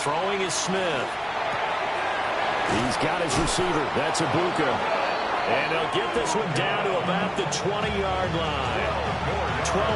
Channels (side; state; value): both; identical; correlation 1.00